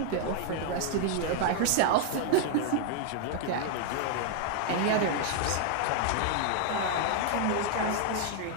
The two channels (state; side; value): different; both; correlation 0.00